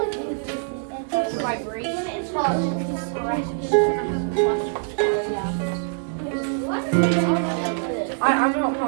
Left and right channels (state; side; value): silent; left; digital silence